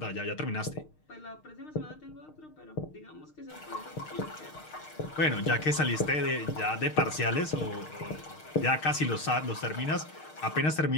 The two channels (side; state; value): right; late; 6.5 ms